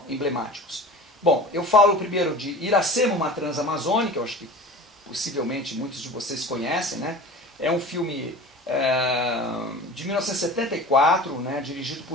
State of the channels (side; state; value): both; normal; correlation 0.37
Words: emblemáticos. Bom, eu falo primeiro de Iracema, uma Transamazônica, eu acho que possivelmente muitos de vocês conhecem, né? É um filme de 1974, né? Dirigido